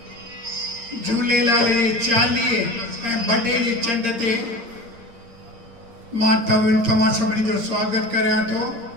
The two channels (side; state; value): left; late; 8.7 ms